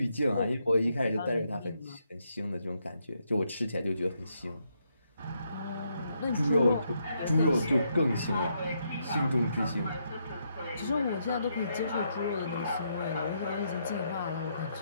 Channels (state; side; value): inverted; both; correlation -0.77